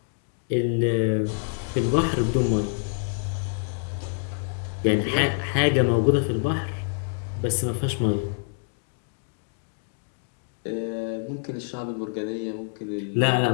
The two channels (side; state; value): right; silent; digital silence